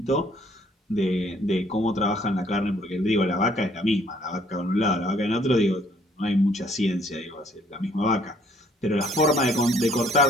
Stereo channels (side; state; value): both; normal; correlation 0.63